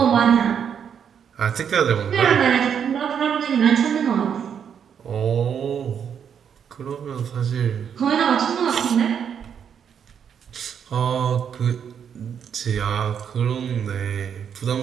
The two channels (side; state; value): left; quieter; 7.9 dB